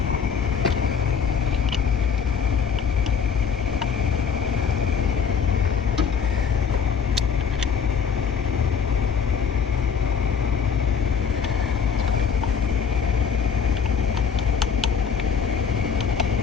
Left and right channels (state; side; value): quieter; right; 6.6 dB